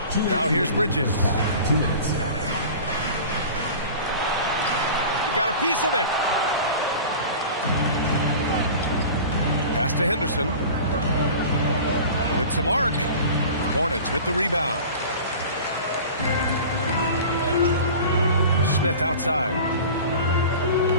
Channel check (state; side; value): inverted; both; correlation -0.38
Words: Now here's Bridges. 2 minutes. He got a piece of it. Pass to Henderson. With some arc. Hornets with the rebound. Smith outside.